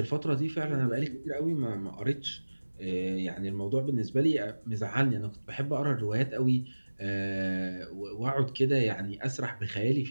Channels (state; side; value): inverted; both; correlation -1.00